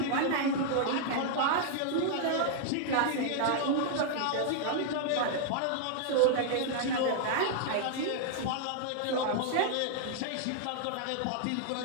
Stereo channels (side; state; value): both; different; correlation -0.01